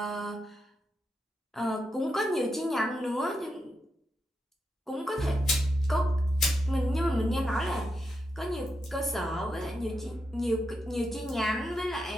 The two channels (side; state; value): both; normal; correlation 0.85